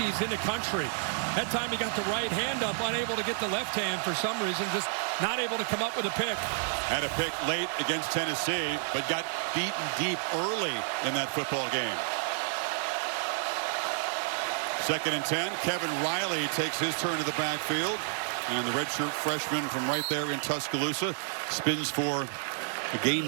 in the country. That time he got the right hand up, unable to get the left hand for some reason, just not able to come up with a pick. Had a pick late against Tennessee, but got beaten deep early in that football game. 2nd and 10. Kevin Riley takes his turn to the backfield. And the redshirt freshman from right there in Tuscaloosa spins for a gain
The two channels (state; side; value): silent; left; 58 dB below the other